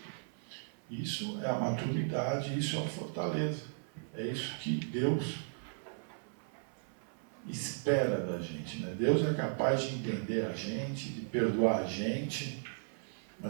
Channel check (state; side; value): silent; left; 54 dB below the other